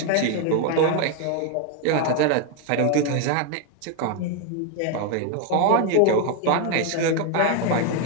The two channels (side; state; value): both; different; correlation 0.01